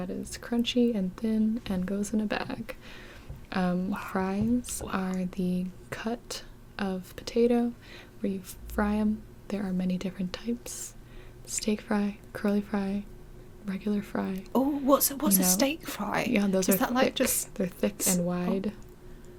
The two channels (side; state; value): both; identical; correlation 1.00